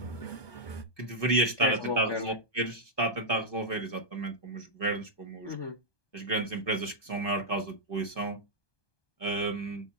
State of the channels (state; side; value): late; right; 1.2 ms